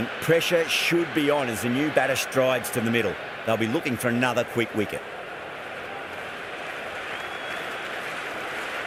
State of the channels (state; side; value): identical; both; correlation 1.00